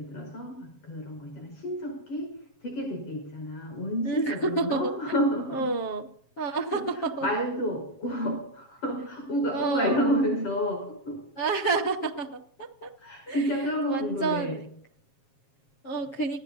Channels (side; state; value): right; late; 7.4 ms